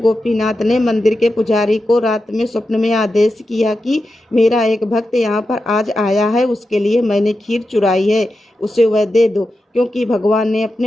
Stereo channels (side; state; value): both; normal; correlation 0.90